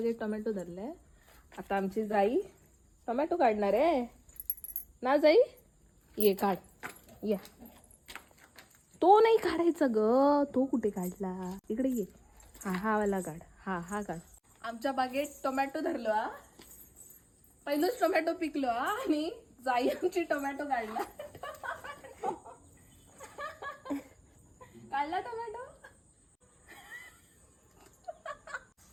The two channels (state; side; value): identical; both; correlation 1.00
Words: टोमॅटो धरले. आता आमची जाई टोमॅटो काढणार आहे ना. जाई ये काढ, या. तो नाही काढायचा ग, तो कुठे काढला, इकडे ये. हा वाला काढ, हा काढ. आमच्या बागेत टोमॅटो धरलो हा, पहिलंच टोमॅटो पिकलो हा, आणि जाई आमची टोमॅटो काढला. काढला टोमॅटो.